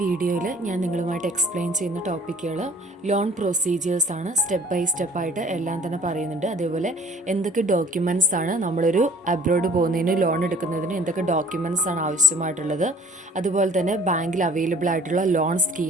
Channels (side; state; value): both; normal; correlation 0.52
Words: ഞാൻ നിങ്ങളുമായിട്ട് എക്സ്പ്ലെയിൻ ചെയ്യുന്ന ടോപ്പിക്കുകൾ ലോൺ പ്രൊസീജിയേഴ്സാണ്. സ്റ്റെപ്പ് ബൈ സ്റ്റെപ്പായിട്ട് എല്ലാം തന്നെ പറയുന്നുണ്ട്. അതേപോലെ എന്തൊക്കെ ഡോക്യുമെൻറ്റ്സ് ആണ് നമ്മളൊരു അബ്രോഡ് പോകുന്നതിന് ലോൺ എടുക്കുന്നതിന് എന്തൊക്കെ ഡോക്യുമെൻറ്റ്സ് ആണ് ആവശ്യമായിട്ടുള്ളത്, അതുപോലെ തന്നെ ബാങ്കിൽ അവൈലബിൾ ആയിട്ടുള്ള ലോൺ